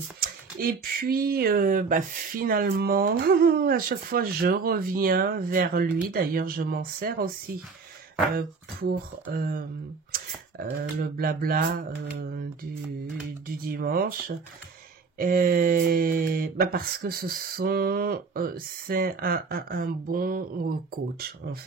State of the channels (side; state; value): left; quieter; 4.8 dB